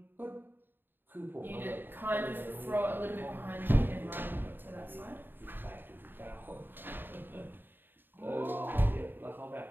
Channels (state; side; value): late; left; 0.095 ms